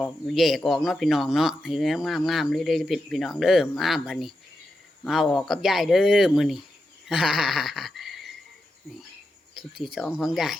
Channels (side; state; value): both; normal; correlation 0.88